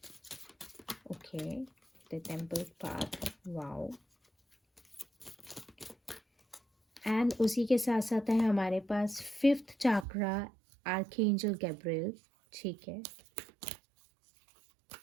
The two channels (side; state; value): left; drops out; at 10.1 s